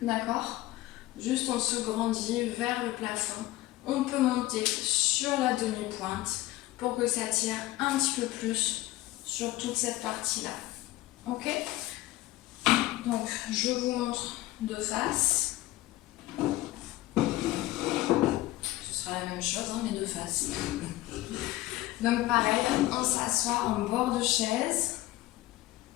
d'accord? Juste on se grandit vers le plafond. On peut monter sur la demi-pointe pour que ça tire un petit peu plus sur toute cette partie-là. Ok? Donc, je vous montre de face. Ce sera la même chose, hein, mais de face. Donc, pareil, on s'assoit en bord de chaise,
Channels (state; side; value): quieter; right; 17.0 dB